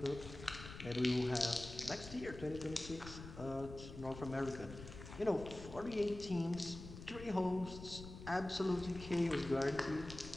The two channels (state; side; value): noise; left; rumble, 12 dB below the sound